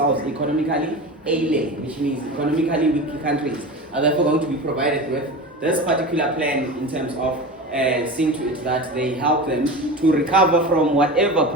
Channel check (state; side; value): normal; both; correlation 0.30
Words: economically ailing, which means economically weak countries are therefore going to be provided with this particular plan in terms of seeing to it that they help them to recover from whatever